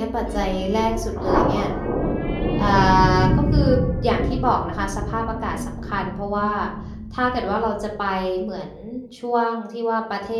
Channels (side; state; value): both; identical; correlation 1.00